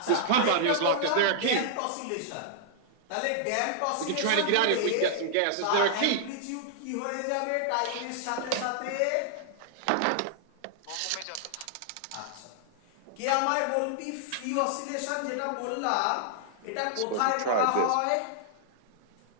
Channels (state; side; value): different; both; correlation -0.01